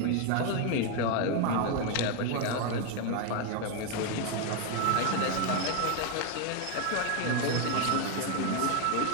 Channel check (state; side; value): different; both; correlation 0.01